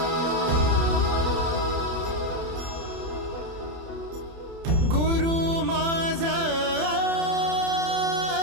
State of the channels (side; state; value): left; late; 30 ms